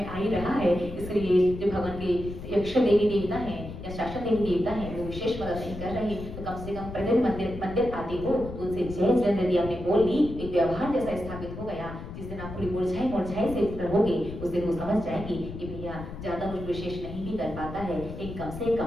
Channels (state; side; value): noise; left; rumble, 10 dB below the sound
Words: आ ही रहा है। इसलिए जो भगवान के यक्ष देवी देवता हैं या शासन देवी देवता हैं, वो विशेष मदद नहीं कर रहे, तो कम से कम प्रतिदिन मंदिर आते हो तो उनसे जय जिनेंद्र यदि आपने बोल ली, एक व्यवहार जैसा स्थापित हो गया। जिस दिन आप थोड़ी मुरझाई से रहोगे, उस दिन वो समझ जाएगी कि भैया ज्यादा कुछ विशेष नहीं भी कर पाता है, एक कम से